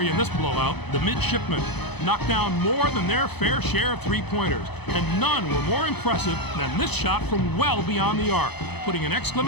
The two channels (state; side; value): late; right; 0.98 ms